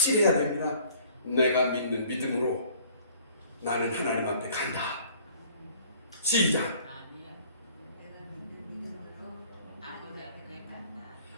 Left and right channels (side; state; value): both; inverted; correlation -0.54